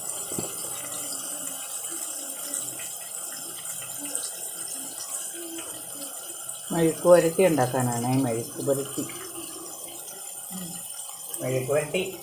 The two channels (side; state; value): both; identical; correlation 1.00